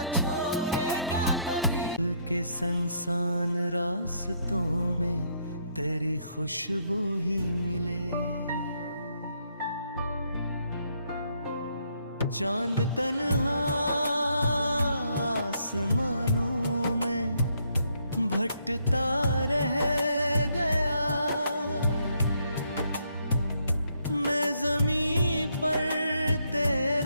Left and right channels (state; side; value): inverted; both; correlation -0.73